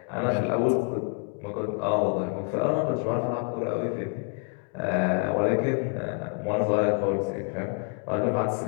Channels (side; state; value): right; quieter; 38.9 dB